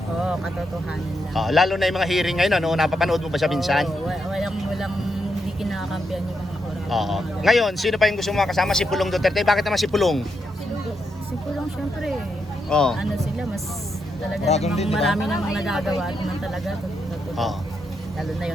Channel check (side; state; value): both; normal; correlation 0.82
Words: Oo, katotohanan lang. Lalo na yung mga hearing ngayon, napapanood mo ba siya minsan? Oo, walang hindi kinakampihan yung mga oras. Oo. Ngayon, sino pa yung gusto mo makasama? Si Pulong Duterte. Bakit naman si Pulong? Si Pulong syempre, Oo. ano sila, mas talaga Dragon namang din, di ba? marami namang nagagawa at naman talaga. Oo. Lalo na